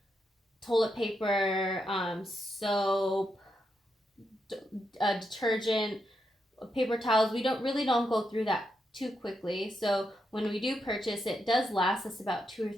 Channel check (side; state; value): both; normal; correlation 0.83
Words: toilet paper, soap, detergent, paper towels. We really don't go through that too quickly. So when we do purchase, it does last us about 2 or